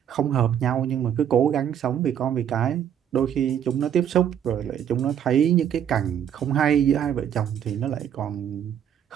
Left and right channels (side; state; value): left; quieter; 9.2 dB